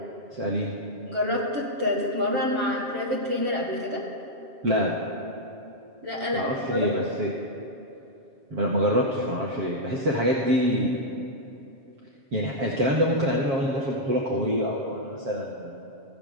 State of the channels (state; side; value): late; left; 7.5 ms